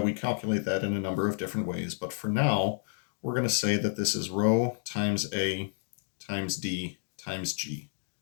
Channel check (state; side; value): silent; right; digital silence